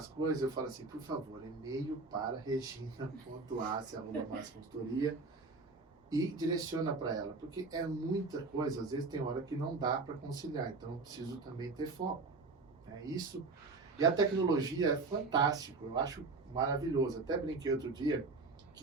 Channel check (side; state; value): left; quieter; 3.8 dB